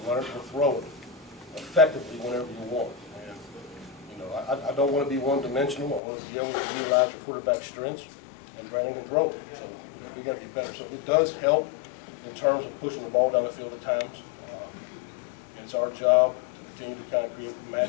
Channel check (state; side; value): drops out; right; at 6.0 s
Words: learn to throw it effectively whenever you want. And you know, I don't want to be one-dimensional. I want to be able to utilize your quarterback's strengths, and Brandon can throw it. So we got to be better. So it does help in terms of pushing the ball down the field at times. It's our job to continue to kind of create